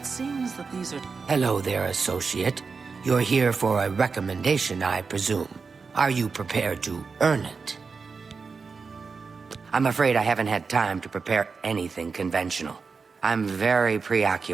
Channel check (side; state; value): left; quieter; 4.9 dB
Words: seems that these are... Hello there, associate. You're here for a recommendation, I presume. Are you prepared to earn it? I'm afraid I haven't had time to prepare anything conventional. I'm very